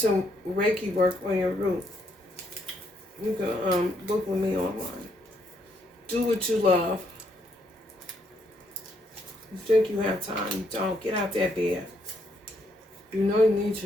Reiki work on your root. You can book with me online. Do what you love. You think you have time, you don't. Get out that bed. You know you need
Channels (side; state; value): both; normal; correlation 0.74